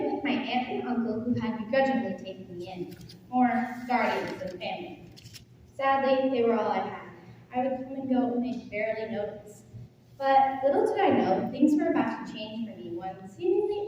with my aunt and uncle who had begrudgingly taken me in, or guardians of the family. Sadly, they were all I had. I would come and go and they'd barely notice. But little did I know, things were about to change for me one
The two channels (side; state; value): both; identical; correlation 1.00